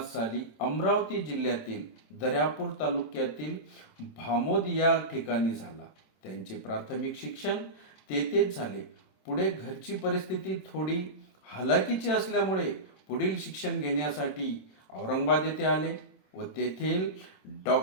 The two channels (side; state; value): right; late; 27 ms